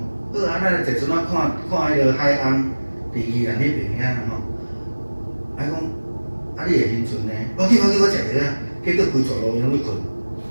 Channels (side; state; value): both; inverted; correlation -1.00